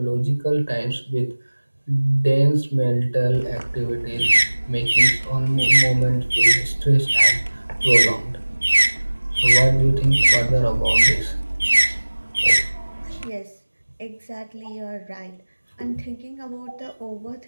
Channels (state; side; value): inverted; both; correlation -1.00